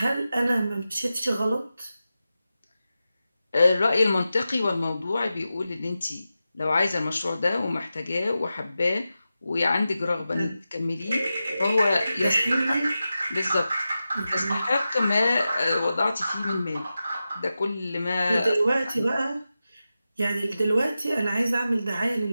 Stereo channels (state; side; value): inverted; both; correlation -0.92